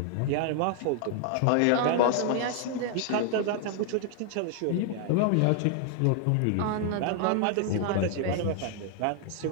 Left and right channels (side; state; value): both; different; correlation 0.00